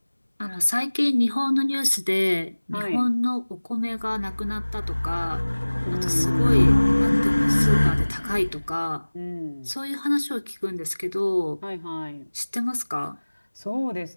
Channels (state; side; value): inverted; both; correlation -1.00